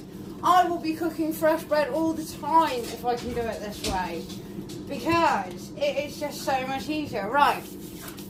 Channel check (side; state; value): both; identical; correlation 1.00